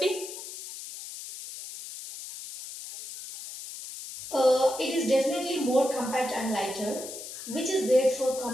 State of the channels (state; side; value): noise; left; hiss, 11 dB below the sound